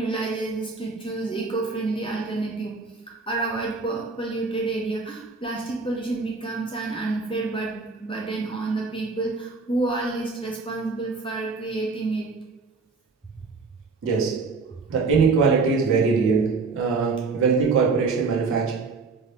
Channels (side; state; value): left; quieter; 4.2 dB